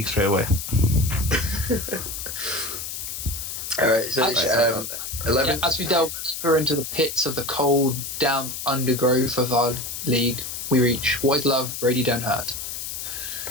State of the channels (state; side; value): noise; left; hiss, 6 dB below the sound